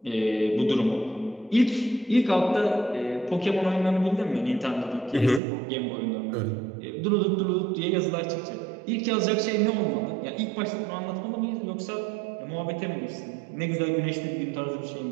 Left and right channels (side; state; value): left; drops out; at 5.4 s